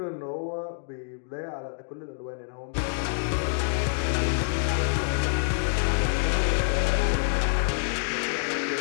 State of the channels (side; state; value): right; silent; digital silence